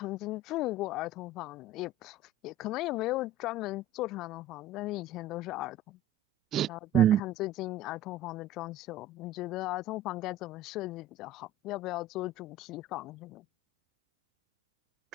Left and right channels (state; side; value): normal; both; correlation 0.38